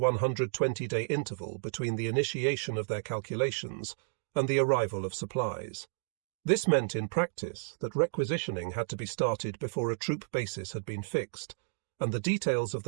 interval between the initiation of their calculations and the arrival of supplies. This meant in practice that requisitioning had to be started before a troop basis had been fixed, and the details of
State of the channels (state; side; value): silent; left; digital silence